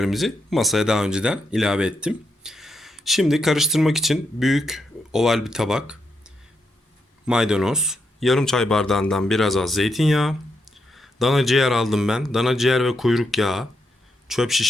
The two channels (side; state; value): both; normal; correlation 0.82